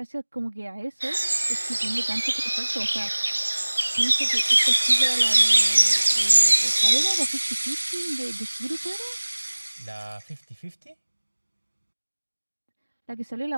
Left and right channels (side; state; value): both; inverted; correlation -1.00